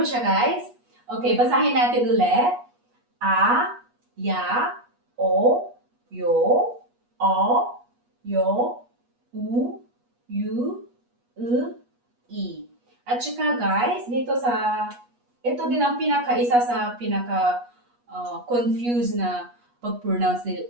siya guys? Okay, basahin natin ulit. A, ya, o, yo, yu, i. At saka guys, ito din ang isa sa confused na pag-pronounce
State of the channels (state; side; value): late; left; 8.3 ms